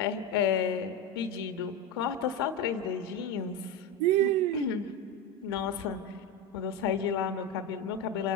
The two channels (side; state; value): both; normal; correlation 0.16